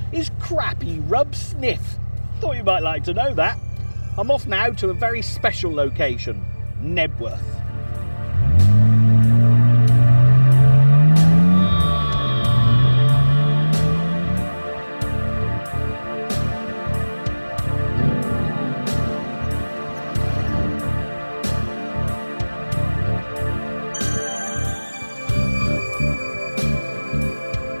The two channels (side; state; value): both; inverted; correlation -1.00